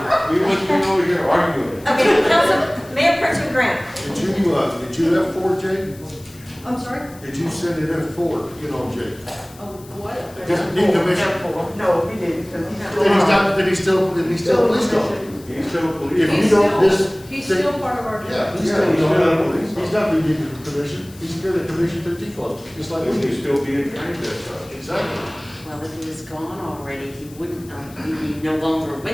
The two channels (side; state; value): left; noise; hiss, 22 dB below the sound